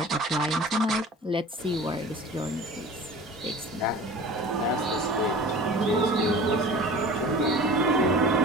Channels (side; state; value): both; normal; correlation 0.40